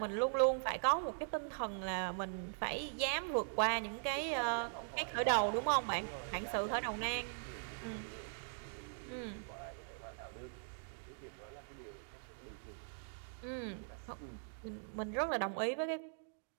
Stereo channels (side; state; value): left; silent; digital silence